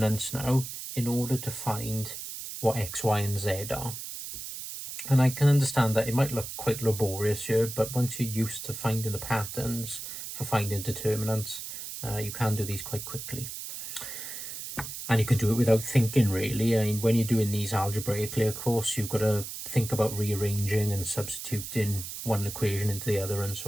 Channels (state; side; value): noise; right; hiss, 8 dB below the sound